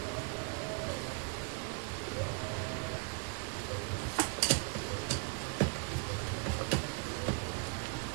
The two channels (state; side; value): quieter; left; 35.2 dB